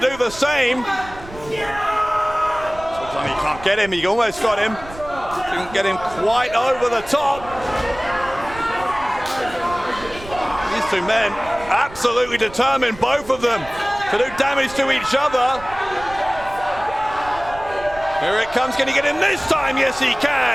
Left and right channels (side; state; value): right; noise; rumble, 17 dB below the sound